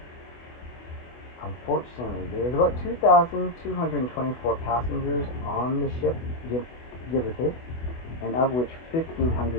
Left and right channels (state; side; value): late; right; 24 ms